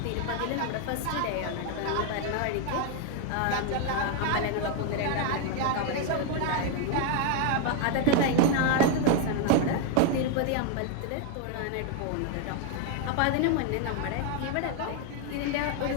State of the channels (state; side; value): different; both; correlation 0.00